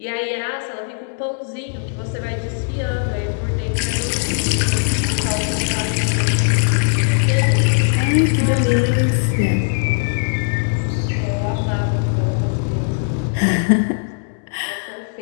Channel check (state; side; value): silent; right; 64 dB below the other